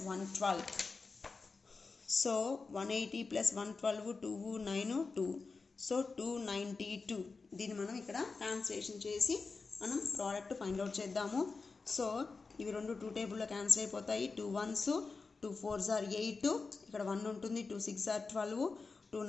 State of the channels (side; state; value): right; quieter; 4.3 dB